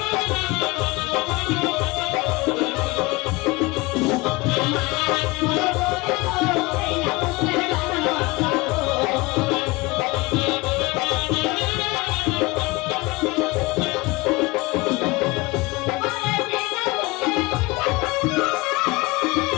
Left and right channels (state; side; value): quieter; right; 23.2 dB